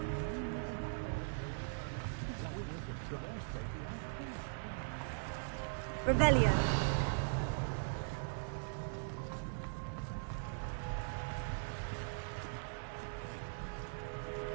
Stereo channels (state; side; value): silent; left; digital silence